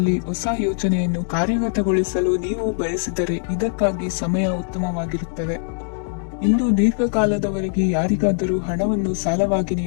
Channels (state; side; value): silent; right; digital silence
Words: ಹೊಸ ಯೋಜನೆಯನ್ನು ಕಾರ್ಯಗತಗೊಳಿಸಲು ನೀವು ಬಯಸಿದರೆ ಇದಕ್ಕಾಗಿ ಸಮಯ ಉತ್ತಮವಾಗಿರುತ್ತದೆ. ಇಂದು ದೀರ್ಘಕಾಲದವರೆಗೆ ಯಾರಿಗಾದರೂ ಹಣವನ್ನು ಸಾಲವಾಗಿ